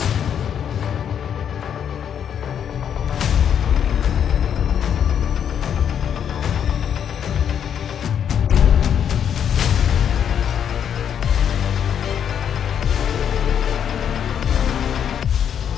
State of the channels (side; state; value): right; quieter; 8.6 dB